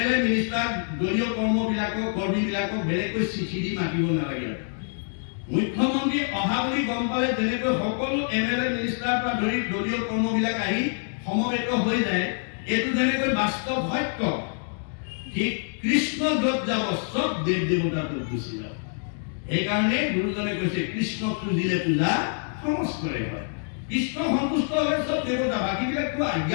মিনিষ্টাৰ দলীয় কৰ্মীবিলাকক বেলেগকৈ চিঠি দি মাতিব নালাগে। মুখ্যমন্ত্ৰী অহা বুলি গম পালে যেনেকৈ সকলো MLA মিনিষ্টাৰ পৰা ধৰি দলীয় কৰ্মবিলাক আহি সমবেত হৈ যায়, এইটো যেনেকৈ বাস্তৱ সত্য, ঠিক কৃষ্ণ য'ত যাব চব দেৱ দেৱতাত গুচি যাব। সেইকাৰণে গুৰুজনে কৈছে কৃষ্ণক পুজিলে পূজা সমস্তৰে হয়। কৃষ্ণ সন্তুষ্ট হ'লে চব দেৱতা, বাকীবিলাকতো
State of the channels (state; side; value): silent; right; 61 dB below the other